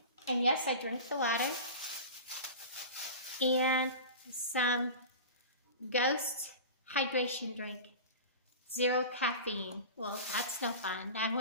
And yes, I drink the water. And some Ghost hydration drink. 0 caffeine. Well, that's no fun. I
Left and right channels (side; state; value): both; inverted; correlation -0.32